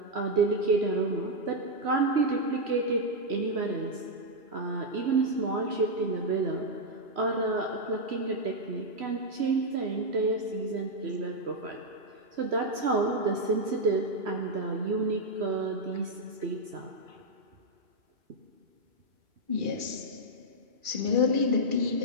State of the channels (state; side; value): late; left; 3.1 ms